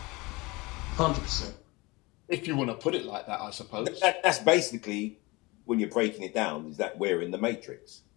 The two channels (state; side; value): quieter; right; 24.0 dB